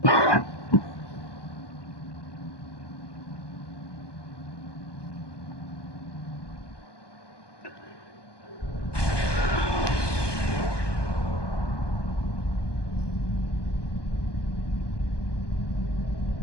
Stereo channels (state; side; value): late; right; 1.2 ms